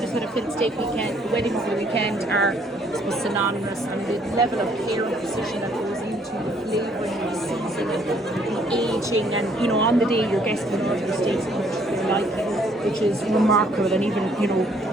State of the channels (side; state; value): both; normal; correlation 0.64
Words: had a fillet steak weekend, the wedding over the weekend, are I suppose synonymous, and the level of care and precision that goes into the flavouring and the seasoning and the aging, and you know, on the day your guests will order your steaks and they like it, which is remarkable. And even, you know,